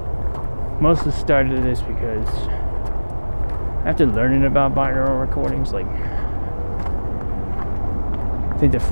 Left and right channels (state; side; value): inverted; both; correlation -1.00